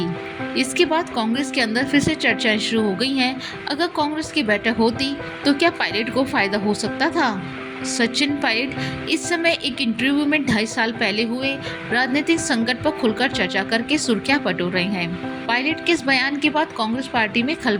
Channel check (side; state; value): both; identical; correlation 1.00